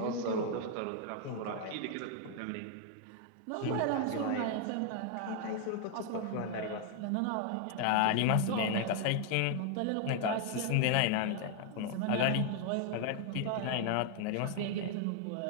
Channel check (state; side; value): different; both; correlation 0.00